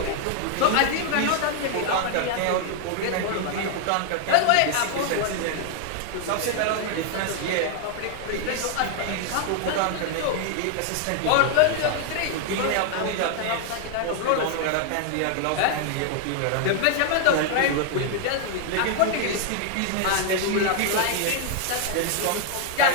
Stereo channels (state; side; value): different; both; correlation 0.00